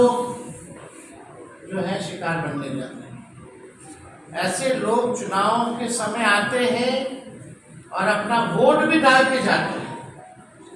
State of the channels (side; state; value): both; identical; correlation 1.00